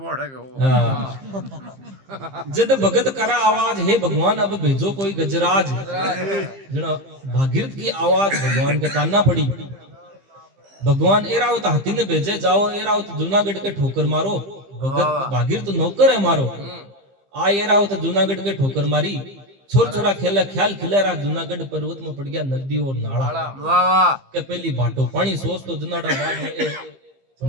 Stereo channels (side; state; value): left; late; 15 ms